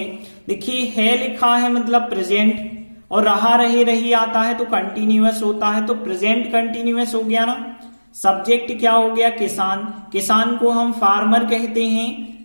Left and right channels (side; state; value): both; inverted; correlation -1.00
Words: देखिए है लिखा है मतलब प्रेजेंट, और रहा रहे रही आता है तो कंटिन्यूअस होता है, तो प्रेजेंट कंटिन्यूअस हो गया ना। सब्जेक्ट क्या हो गया, किसान। किसान को हम फार्मर कहते हैं,